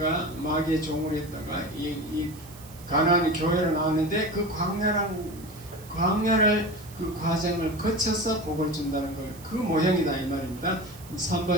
마귀의 종으로 있다가 이 가나안이 교회로 나왔는데 그 광야를 그 과정을 거쳐서 복을 준다는 걸 그 모형이다 이 말입니다.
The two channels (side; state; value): right; noise; hiss, 20 dB below the sound